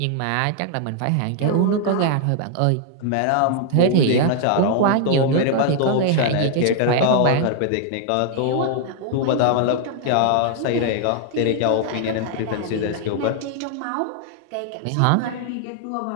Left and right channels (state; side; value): different; both; correlation 0.00